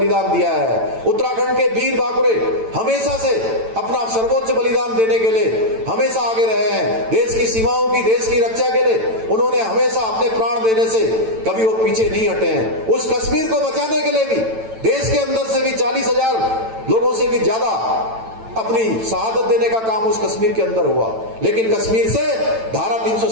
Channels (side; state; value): left; late; 9.0 ms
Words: दिया है। उत्तराखंड के वीर बाकुरे हमेशा से अपना सर्वोच्च बलिदान देने के लिए हमेशा आगे रहे हैं। देश की सीमाओं की, देश की रक्षा के लिए उन्होंने हमेशा अपने प्राण देने से कभी वो पीछे नहीं हटे हैं। उस कश्मीर को बचाने के लिए भी देश के अंदर से भी 40,000 लोगों से भी ज्यादा अपनी शहादत देने का काम उस कश्मीर के अंदर हुआ। लेकिन कश्मीर से धारा